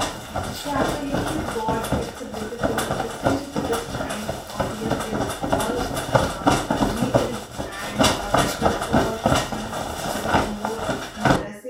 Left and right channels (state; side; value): identical; both; correlation 1.00